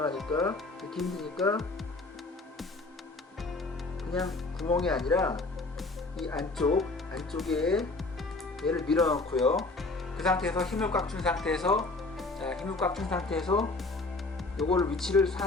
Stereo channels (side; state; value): right; quieter; 3.3 dB